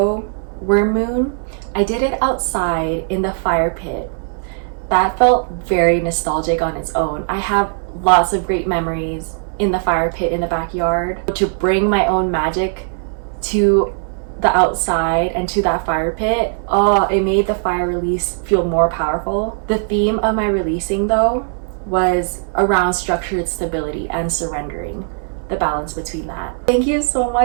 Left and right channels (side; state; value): left; silent; 62 dB below the other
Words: worm moon, I did it outside in the fire pit. That felt very nostalgic on its own. I have lots of great memories in the fire pit in the backyard. To bring my own magic to the outside and to that fire pit, it made the fire release feel more powerful. The theme of my releasing though was around structured stability and surrendering, the balance between that. Thank you so